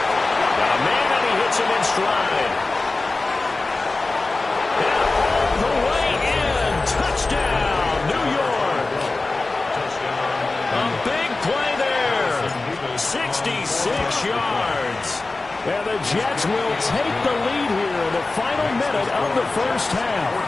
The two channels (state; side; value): quieter; right; 3.4 dB